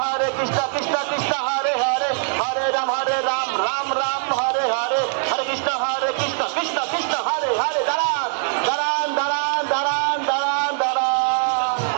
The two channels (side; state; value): left; silent; digital silence